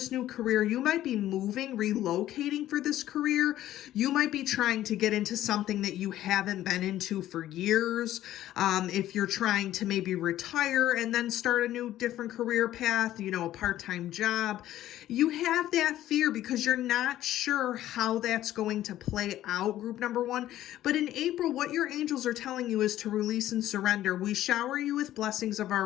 new career, you might be moving, relocating for this career. You might be trying to get into something that you haven't been into for years. If you're trying to maybe retire and then start a new different career path, a part-time job, you have that fear because you're not sure how that's going to play out, group number one. But in April, what your angels are telling you is to release and surrender. We shower you with blessings of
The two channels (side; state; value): right; quieter; 13.4 dB